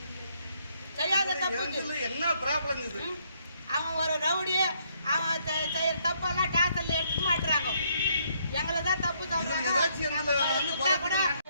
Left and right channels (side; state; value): both; inverted; correlation -0.71